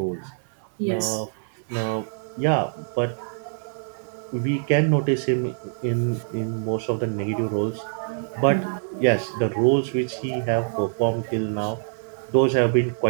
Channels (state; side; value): silent; left; 62 dB below the other